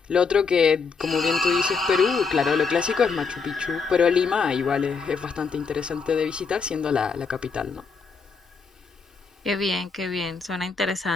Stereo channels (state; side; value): quieter; right; 5.1 dB